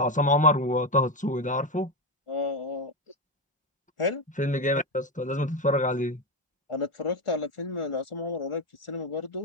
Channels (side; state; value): both; normal; correlation 0.12